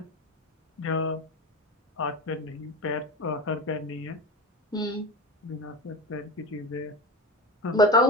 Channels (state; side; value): normal; both; correlation 0.24